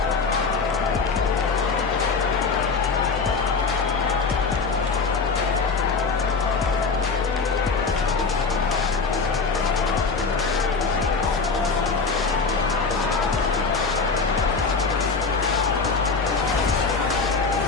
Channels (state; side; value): quieter; right; 4.6 dB